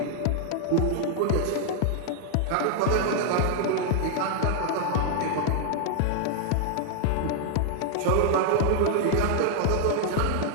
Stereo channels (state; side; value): different; both; correlation 0.00